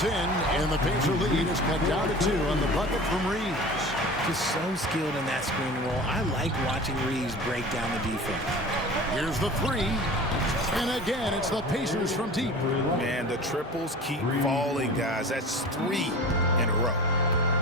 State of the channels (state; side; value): normal; both; correlation 0.37